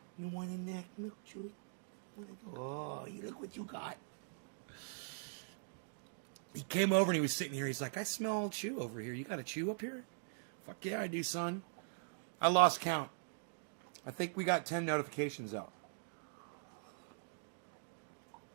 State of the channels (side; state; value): left; silent; digital silence